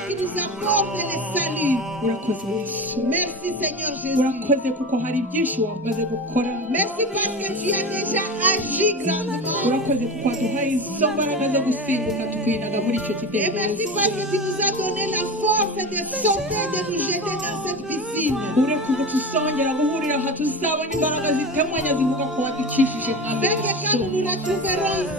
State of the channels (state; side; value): normal; both; correlation 0.27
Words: qui nous apporte le salut. urakoze yesu Merci, Seigneur Jésus. urakoze kuko hari byinshi wamaze gukora Merci parce que tu as déjà agi grandement. urakoze kuko waduhaye izo mbaraga zo gusimbuka tukinaga muri icyo Et kidendezi merci parce que tu nous as donné la force de sauter, de nous jeter dans cette piscine. urekuze tuzongera guhurira aha tuzabona imbaraga zitemanya zivuga ko wadukishije mwami Afin que quand nous nous retrouverons